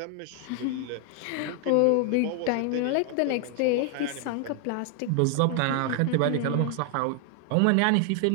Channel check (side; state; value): both; different; correlation 0.00